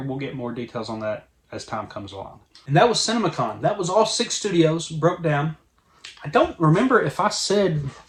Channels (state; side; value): identical; both; correlation 1.00